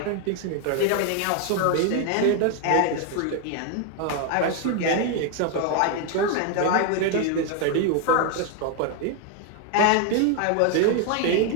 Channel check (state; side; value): different; both; correlation 0.01